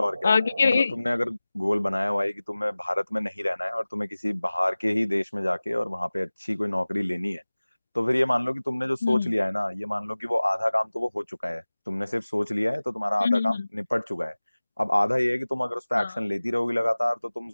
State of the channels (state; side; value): inverted; both; correlation -0.98